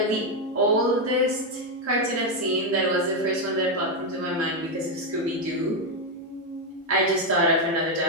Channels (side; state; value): both; normal; correlation 0.04